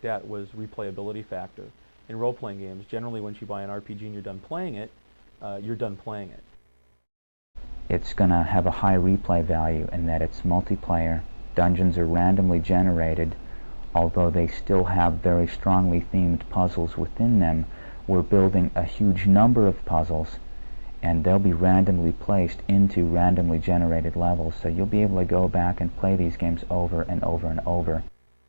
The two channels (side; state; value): both; inverted; correlation -1.00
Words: at was replayability factor. In role-playing games, generally once you buy an RPG and you're done playing it, you're done playing it. It's going to have a high replay value in that it's multiplayer. Dungeons are randomly generated. Although they still have very strongly themed puzzles within them, we're building a huge number of puzzles, and they'll be randomly placed into randomly generated levels, so you'll be able to go back and play these games over and over and over.